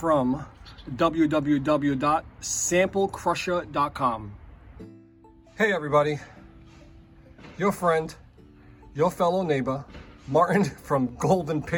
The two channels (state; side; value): identical; both; correlation 1.00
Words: www.SampleCrusher.com. Hey everybody, your friend, your fellow neighbor, Martin from Gold and